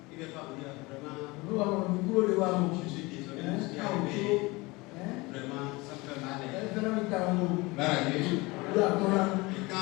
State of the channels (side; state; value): right; quieter; 23.5 dB